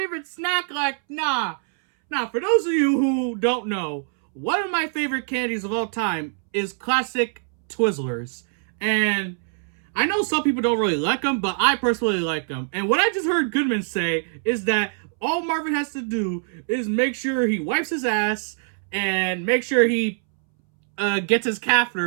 snack like, nah. Now, for those of you who don't know, one of my favorite candies of all time is classic Twizzlers. And I know some people don't really like them, but I personally like them. And what I just heard Goodman say is that all Marvin has to do is make sure he wipes his ass and make sure he gets his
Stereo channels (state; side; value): silent; left; 63 dB below the other